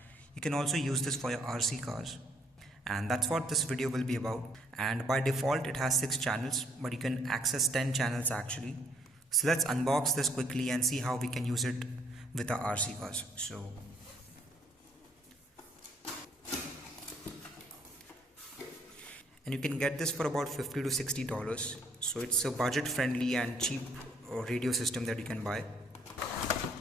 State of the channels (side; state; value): both; normal; correlation 0.65